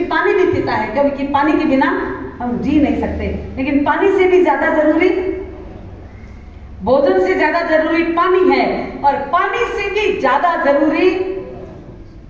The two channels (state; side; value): identical; both; correlation 1.00